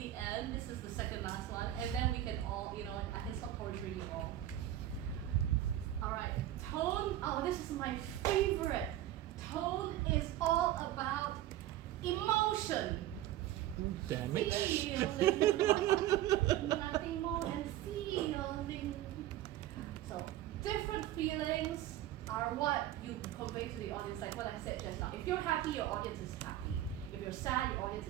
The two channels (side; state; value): left; quieter; 13.2 dB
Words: end. This is the second last one. And then we can all, I can stop torturing you all. Alright, tone. Oh, this is my favorite. Tone is all about emotion. Damn it. Feeling. Nothing more than feeling. So, different feelings are what you convey to the audience, like what I said just now. If you're happy, your audience is happy. If you're sad, your audience